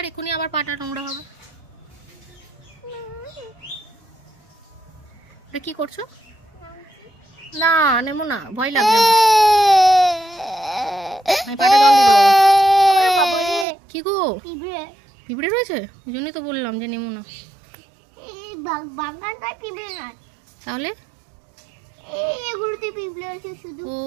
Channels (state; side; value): drops out; left; at 13.7 s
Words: এখনই আবার পাটা নোংরা হবে। কি করছো? না নেমো না, ভয় লাগবে। কি গো, পিঁপড়ে রয়েছে? ওই জন্যই তো বললাম যে নেমো না। তাহলে ও